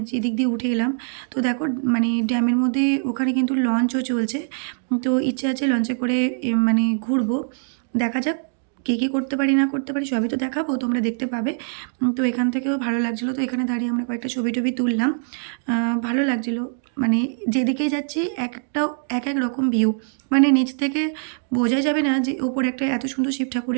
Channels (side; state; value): left; silent; 64 dB below the other